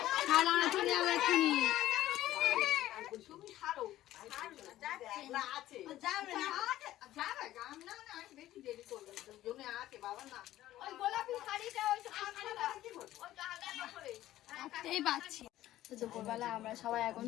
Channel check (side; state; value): right; quieter; 14.3 dB